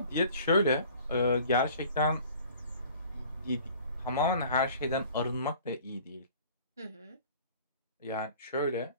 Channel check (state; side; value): inverted; both; correlation -0.49